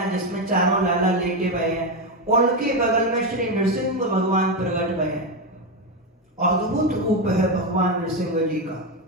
जिसमें चारों लाला लेटे हुए हैं, उनके बगल में श्री नृसिंह भगवान प्रकट हुए हैं। अद्भुत रूप है भगवान नृसिंह जी का।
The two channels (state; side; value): normal; both; correlation 0.10